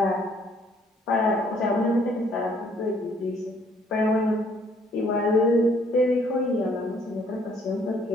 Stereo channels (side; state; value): both; normal; correlation 0.63